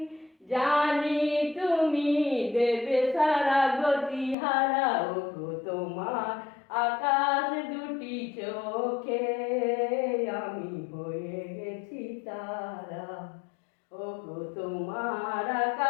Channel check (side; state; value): right; drops out; at 4.4 s